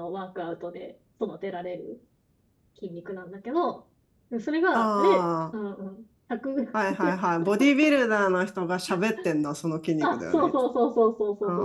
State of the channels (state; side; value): identical; both; correlation 1.00